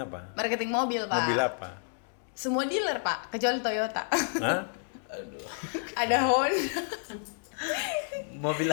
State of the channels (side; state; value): right; silent; digital silence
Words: apa? Marketing mobil Pak. Mobil apa? Semua dealer Pak, kecuali Toyota. Hah? Aduh. Ada Honda. Mobil